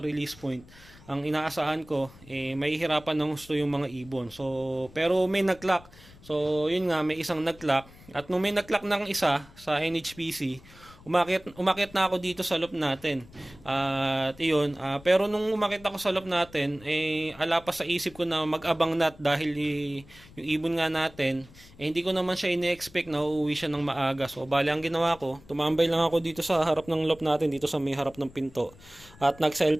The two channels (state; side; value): noise; left; rumble, 22 dB below the sound